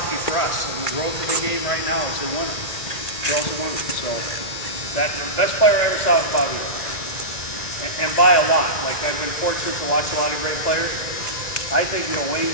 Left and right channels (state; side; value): late; right; 2.0 ms